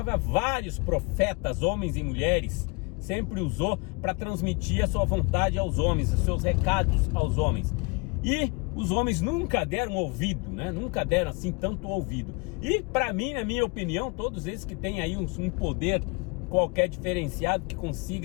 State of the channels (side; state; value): right; quieter; 29.5 dB